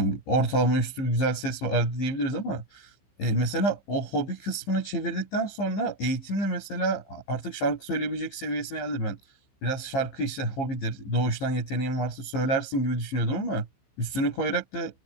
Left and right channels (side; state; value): right; late; 15 ms